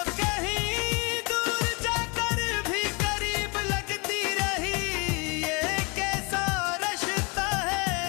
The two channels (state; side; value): quieter; right; 30.3 dB